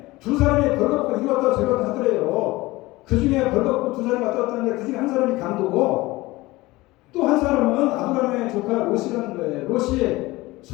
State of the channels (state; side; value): quieter; right; 20.1 dB